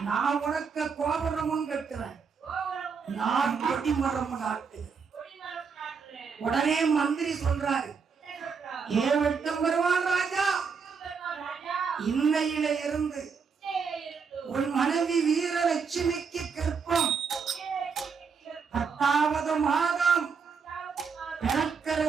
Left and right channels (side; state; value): left; quieter; 5.7 dB